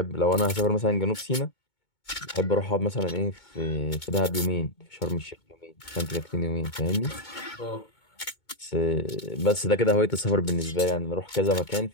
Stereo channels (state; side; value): late; right; 2.2 ms